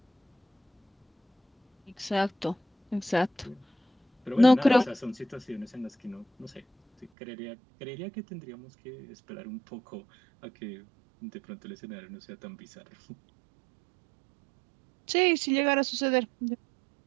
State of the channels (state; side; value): drops out; left; at 7.1 s